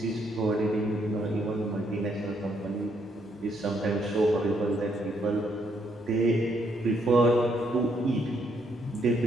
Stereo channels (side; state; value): both; normal; correlation 0.73